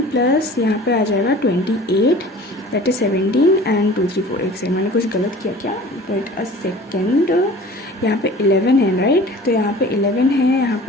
प्लस यहाँ पे आ जाएगा 28 दैट इज़ 17 एंड 2 3 4 एक सेकेंड, मैंने कुछ गलत किया क्या, वेट अ सेकेंड, यहाँ पे 11 है राइट, तो यहाँ पे 11 है, यहाँ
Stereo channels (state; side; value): normal; both; correlation 0.44